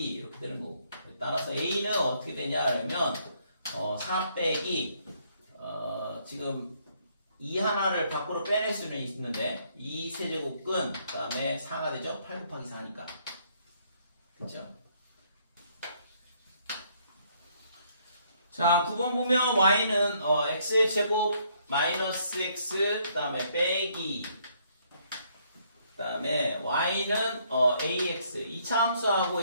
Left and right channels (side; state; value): both; inverted; correlation -0.68